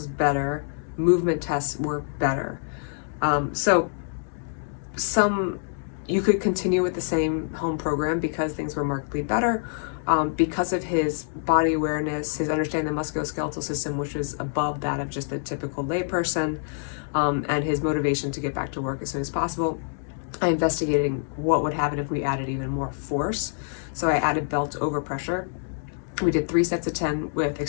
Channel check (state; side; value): silent; right; digital silence